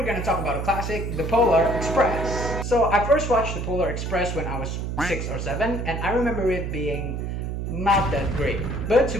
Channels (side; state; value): right; noise; hum, 3 dB below the sound